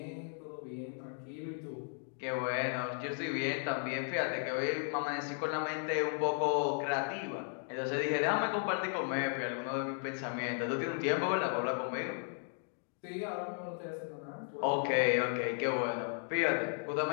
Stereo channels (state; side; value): silent; right; 54 dB below the other